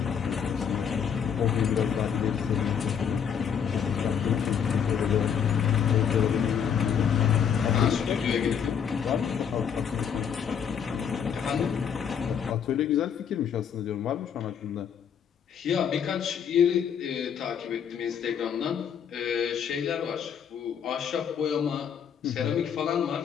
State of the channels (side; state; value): right; quieter; 7.7 dB